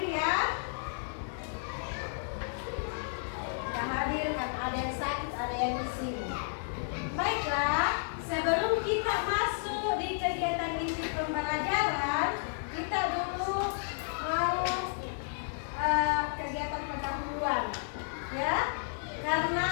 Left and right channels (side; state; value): right; silent; digital silence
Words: ya. Tidak hadir karena ada yang sakit, ada yang di sini. Baiklah, sebelum kita masuk di kegiatan inti pembelajaran, kita dulu mau kegiatan pendahuluan, ya.